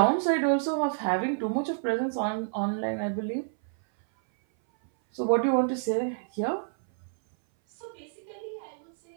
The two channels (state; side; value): silent; left; 58 dB below the other